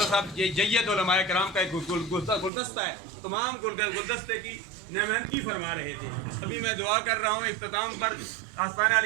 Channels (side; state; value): left; drops out; at 2.5 s